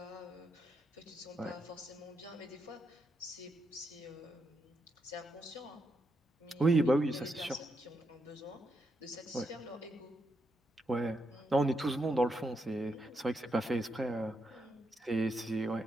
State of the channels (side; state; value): both; normal; correlation 0.82